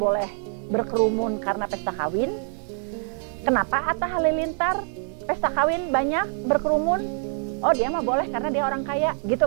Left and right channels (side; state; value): left; silent; 62 dB below the other